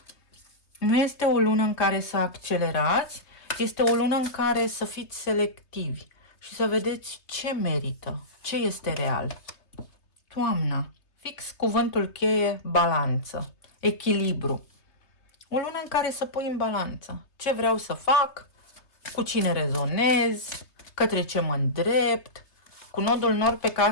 Nu este o lună în care să accelerați, este o lună în care să fiți selectivi și să vedeți ce merită, ce este real. Toamna, fix cuvântul cheie, balanță, echilibru. O lună în care să pui în balanță ce vreau să fac, cu cine rezonez, către ce mă îndrept. Cu nodul nord pe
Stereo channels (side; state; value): right; late; 3.3 ms